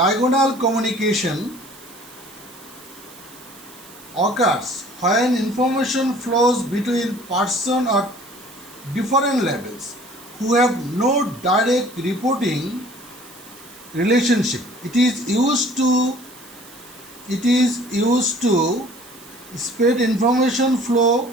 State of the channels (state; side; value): noise; right; hiss, 21 dB below the sound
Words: communication occurs when information flows between person or different levels who have no direct reporting relationship. It is used to spread information flow